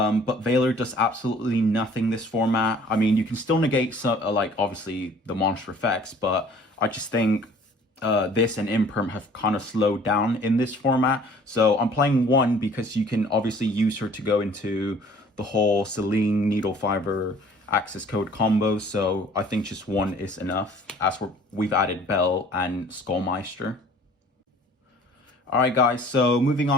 Veiler does absolutely nothing this format. I mean, you can still negate some, like obviously the monster effects, but I just think this and Imperm have kind of slowed down in this format. So I'm playing 1 because you can obviously use her to go into the whole Celine Needle Fiber access code combo. So I think just 1 is enough, as we've added Bell and Skullmeister. Alright guys, so moving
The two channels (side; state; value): both; normal; correlation 0.52